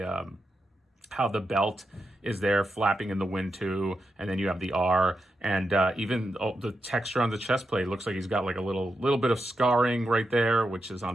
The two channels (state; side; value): normal; both; correlation 0.87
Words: belt is there flapping in the wind too, and then you have the R, and even the texture on the chest plate looks like he's got like a little bit of scarring right there, which is